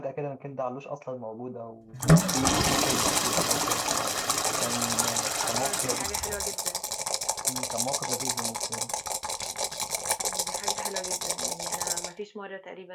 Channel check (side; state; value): both; identical; correlation 1.00